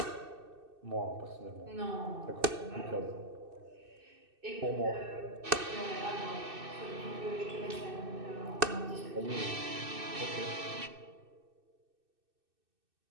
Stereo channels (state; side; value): late; left; 2.6 ms